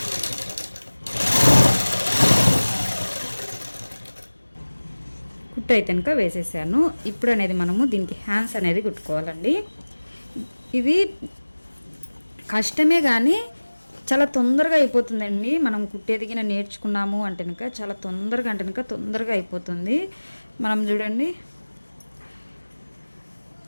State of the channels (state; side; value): inverted; both; correlation -1.00